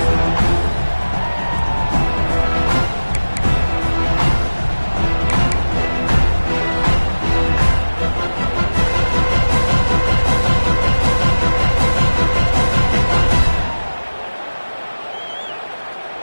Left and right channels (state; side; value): inverted; both; correlation -1.00